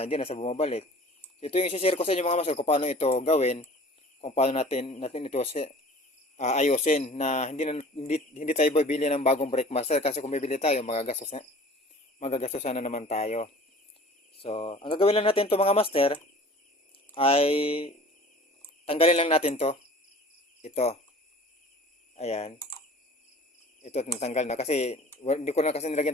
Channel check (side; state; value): both; normal; correlation 0.45